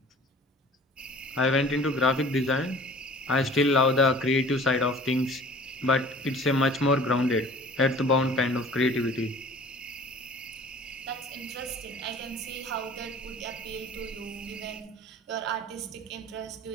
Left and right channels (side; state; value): both; normal; correlation 0.46